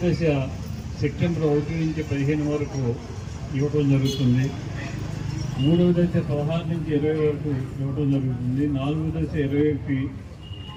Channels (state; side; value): identical; both; correlation 1.00